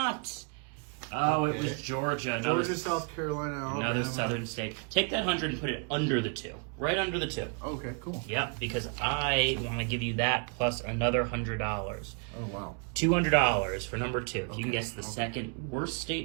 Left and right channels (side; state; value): left; quieter; 37.6 dB